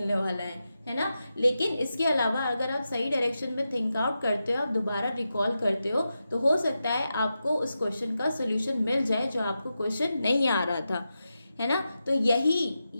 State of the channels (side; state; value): both; inverted; correlation -0.90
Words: वाला है ना। लेकिन इसके अलावा अगर आप सही डायरेक्शन में थिंक आउट करते हो, आप दोबारा रिकॉल करते हो, तो हो सकता है आपको उस क्वेश्चन का सॉल्यूशन मिल जाए जो आपको क्वेश्चन नहीं आ रहा था, है ना। तो